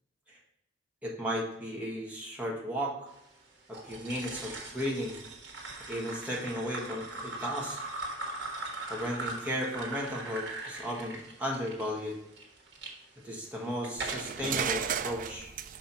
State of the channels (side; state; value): both; normal; correlation 0.38